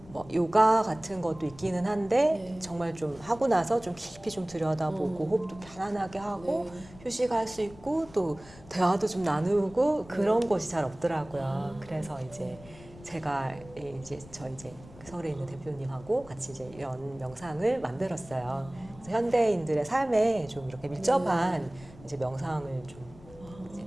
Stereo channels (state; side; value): noise; left; rumble, 20 dB below the sound